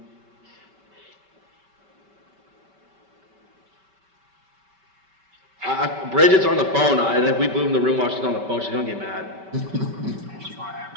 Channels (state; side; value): late; left; 5.2 ms